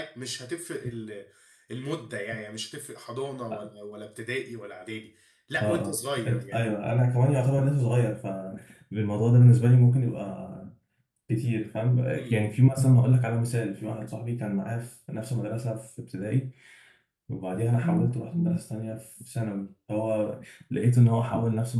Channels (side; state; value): both; identical; correlation 1.00